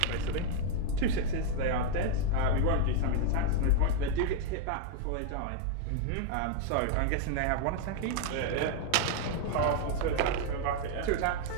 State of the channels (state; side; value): different; both; correlation 0.01